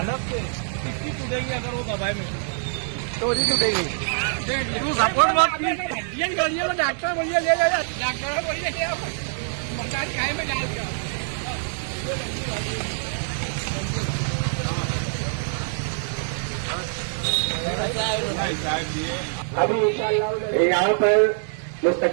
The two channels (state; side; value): silent; left; digital silence